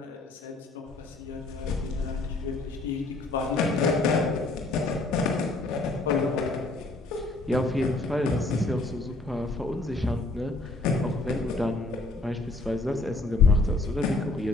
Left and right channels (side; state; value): right; quieter; 3.1 dB